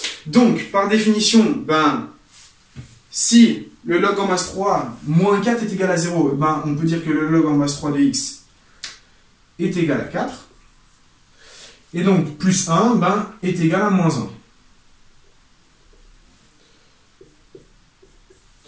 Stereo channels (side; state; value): both; identical; correlation 1.00